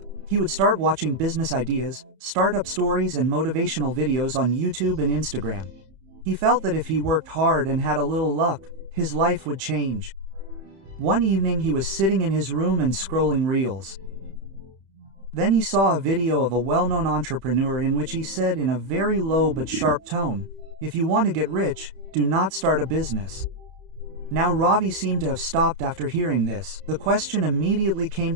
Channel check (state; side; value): late; left; 31 ms